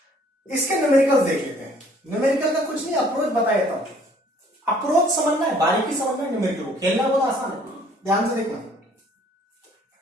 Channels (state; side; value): normal; both; correlation 0.58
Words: इसके न्यूमेरिकल्स देख लेते हैं। न्यूमेरिकल का कुछ नहीं, अप्रोच बता देता हूं। अप्रोच समझना है, बारीकी समझना है, न्यूमेरिकल को खेलना बहुत आसान है, ध्यान से देखना।